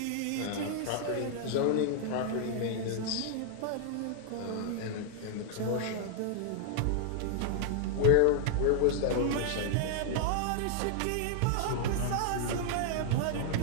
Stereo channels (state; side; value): different; both; correlation 0.00